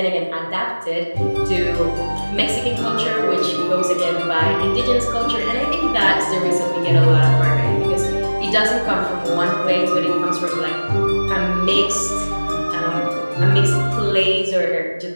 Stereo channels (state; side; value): inverted; both; correlation -1.00